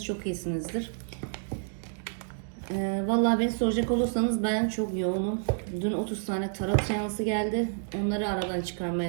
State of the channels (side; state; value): left; silent; digital silence